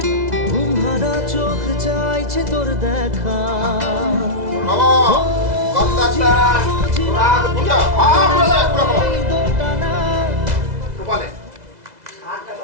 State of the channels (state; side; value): late; left; 2.0 ms